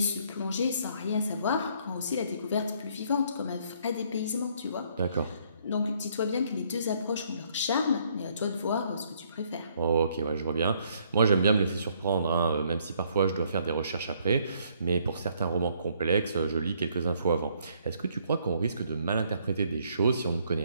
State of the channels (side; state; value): both; inverted; correlation -0.67